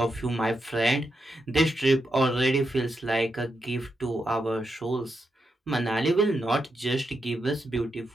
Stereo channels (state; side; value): normal; both; correlation 0.85